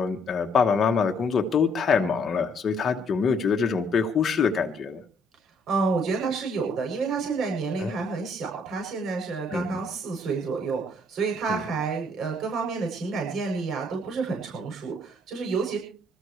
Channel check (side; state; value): both; normal; correlation 0.66